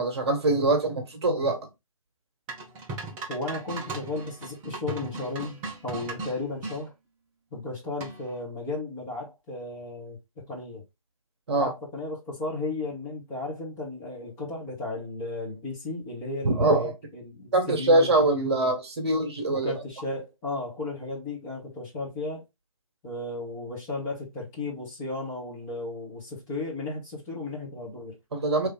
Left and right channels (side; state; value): both; normal; correlation -0.19